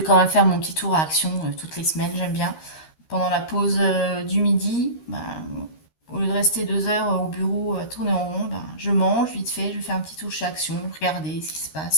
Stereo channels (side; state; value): right; late; 13 ms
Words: quand même faire mon petit tour à Action toutes les semaines, j'aime bien. Pendant la pause du midi, bah, au lieu de rester 2 heures au bureau à tourner en rond, bah, je mange vite fait, je fais un petit tour chez Action, regarder ce qui se